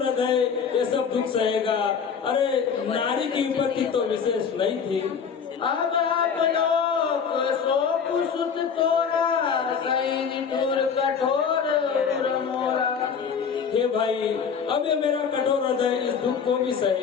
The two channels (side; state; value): right; quieter; 6.6 dB